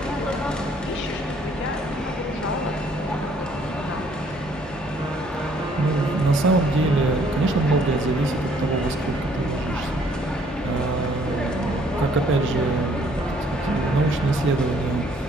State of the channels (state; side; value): normal; both; correlation 0.62